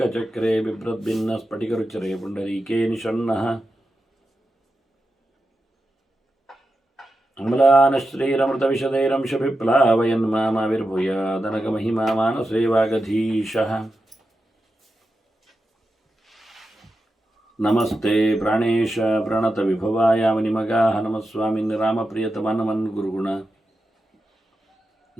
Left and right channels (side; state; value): both; normal; correlation 0.90